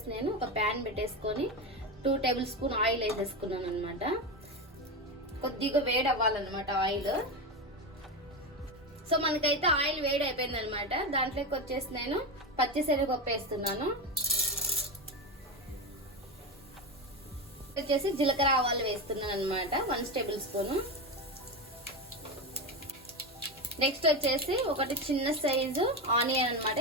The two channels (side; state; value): both; normal; correlation 0.17